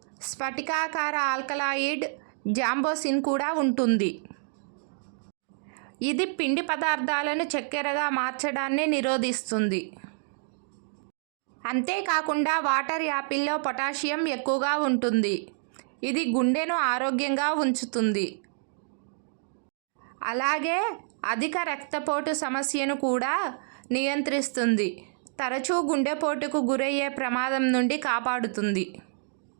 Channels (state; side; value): silent; left; digital silence